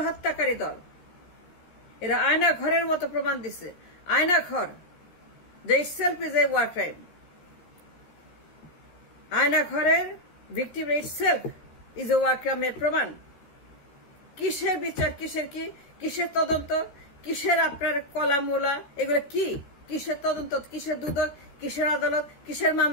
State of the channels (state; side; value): late; right; 13 ms